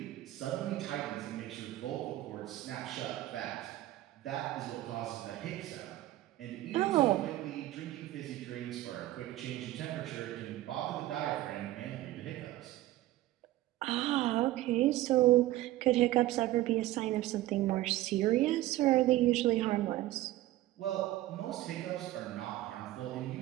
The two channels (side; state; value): left; quieter; 15.8 dB